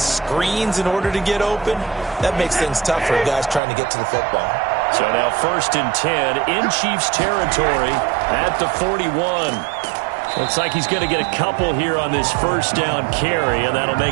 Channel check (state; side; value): drops out; left; at 3.6 s